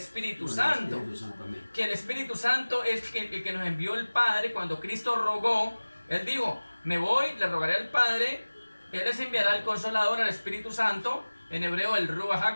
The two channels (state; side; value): inverted; both; correlation -1.00